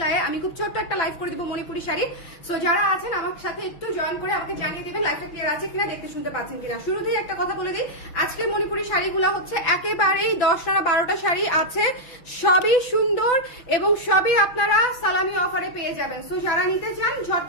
আমি খুব ছোট্ট একটা লাইভ করে দিব মণিপুরি শাড়ি। সো যারা আছেন আমার সাথে একটু জয়েন করে আমাকে জানিয়ে দেবেন লাইভটা ক্লিয়ার আছে কিনা, দেখতে শুনতে পাচ্ছেন কিনা। শুরুতেই একটা কথা বলে দিই, আজকের মণিপুরি শাড়িগুলো হচ্ছে একেবারেই 10টা না 12টা শাড়ি আছে, সবই সুন্দর এবং সবই আপনারা সালামি অফারে পেয়ে যাবেন। সো যারা নিতে চান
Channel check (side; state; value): right; late; 6.2 ms